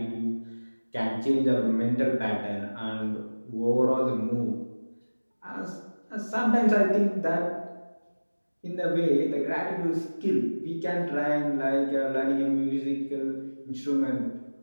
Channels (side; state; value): both; inverted; correlation -1.00